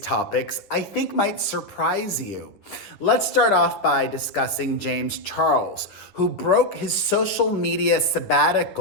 I think might surprise you. Let's start off by discussing James Charles, who broke his social media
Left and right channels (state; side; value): late; right; 9.8 ms